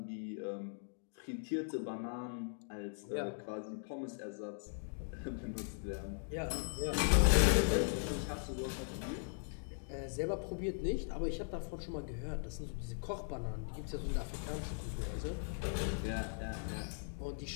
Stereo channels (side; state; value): right; silent; digital silence